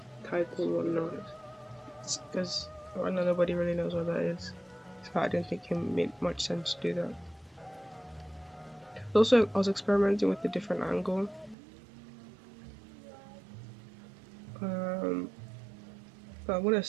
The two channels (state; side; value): drops out; left; at 11.6 s